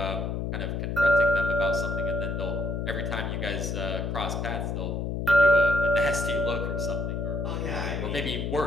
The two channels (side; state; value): left; noise; hum, 2 dB below the sound